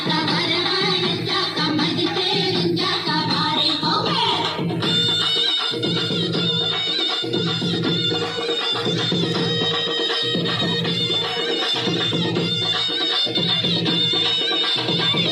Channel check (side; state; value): both; identical; correlation 1.00